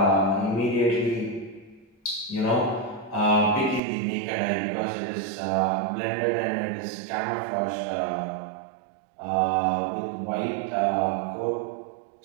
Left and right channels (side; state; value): left; drops out; at 3.8 s